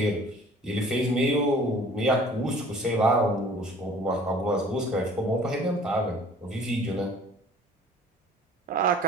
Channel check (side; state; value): both; normal; correlation 0.50